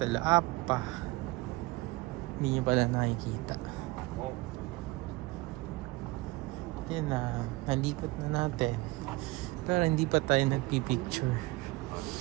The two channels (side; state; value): left; quieter; 21.9 dB